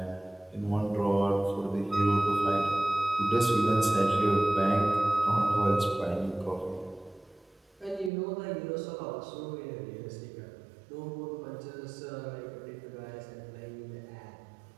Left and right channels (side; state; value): left; drops out; at 8.1 s